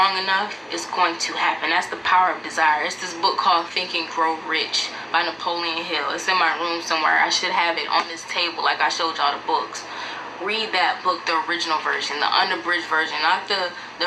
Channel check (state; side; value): identical; both; correlation 1.00